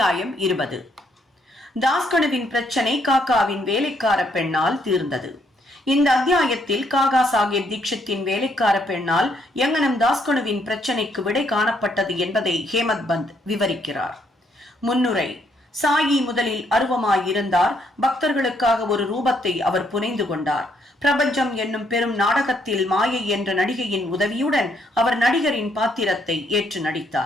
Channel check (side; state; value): both; normal; correlation 0.71